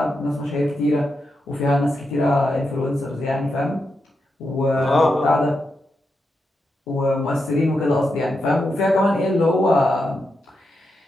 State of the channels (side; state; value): both; normal; correlation 0.86